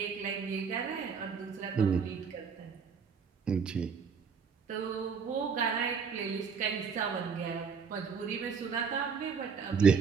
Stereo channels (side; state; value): left; quieter; 6.0 dB